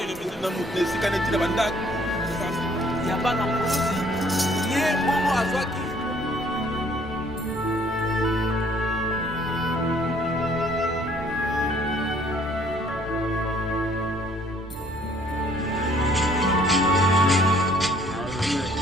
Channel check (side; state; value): both; normal; correlation 0.60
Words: na esika neti na bandako ya bana mosi ye bongo azwaki